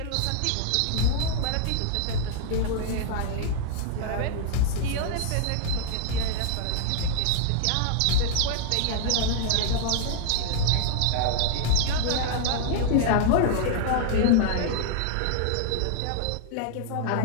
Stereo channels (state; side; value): different; both; correlation -0.01